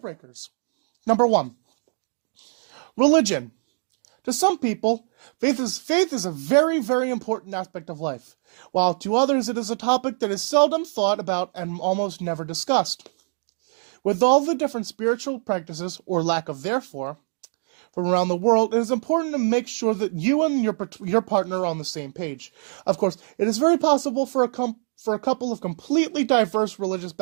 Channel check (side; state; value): left; silent; 56 dB below the other